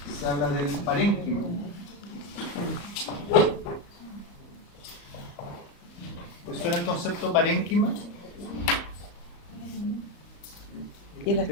se habla del parénquima. ¿Les suena el concepto parénquima? Y el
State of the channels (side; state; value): right; late; 34 ms